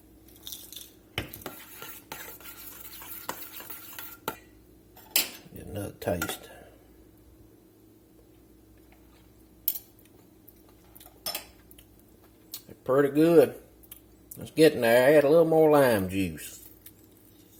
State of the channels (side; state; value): both; identical; correlation 1.00